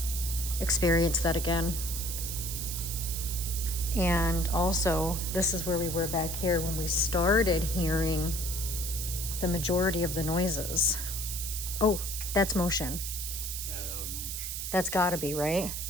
experience that again. And also, this is where we were back here when we started hearing the majority of the noises. Oh, that's motion. Yeah, that was motion. That's gotta be, right?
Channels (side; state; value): right; noise; hiss, 4 dB below the sound